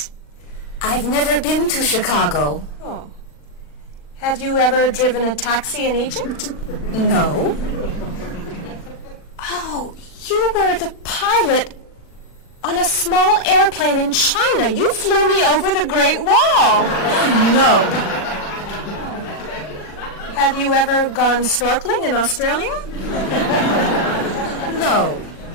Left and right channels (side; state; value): right; late; 40 ms